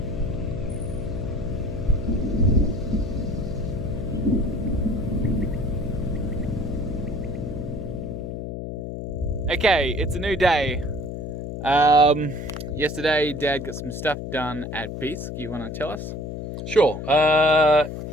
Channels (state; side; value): noise; left; hum, 6 dB below the sound